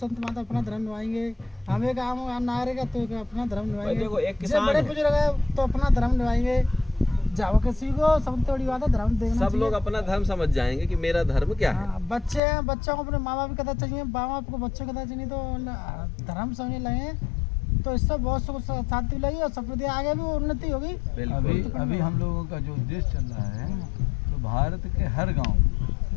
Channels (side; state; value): right; drops out; at 12.4 s